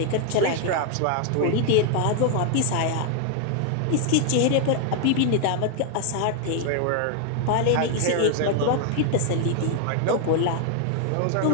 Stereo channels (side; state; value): both; different; correlation 0.00